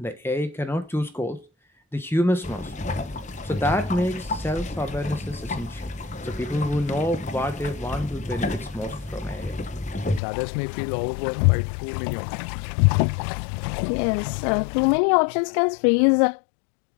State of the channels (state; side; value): drops out; right; at 10.2 s